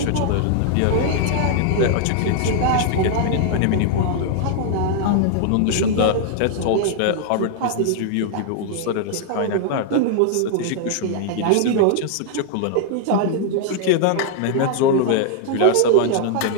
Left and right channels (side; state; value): both; different; correlation 0.00